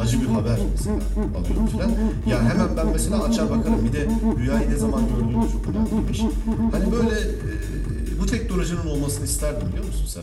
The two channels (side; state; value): both; identical; correlation 1.00